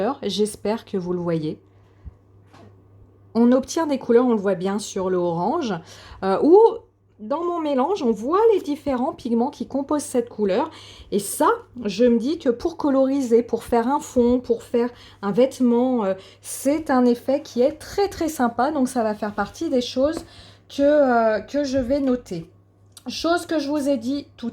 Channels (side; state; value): both; identical; correlation 1.00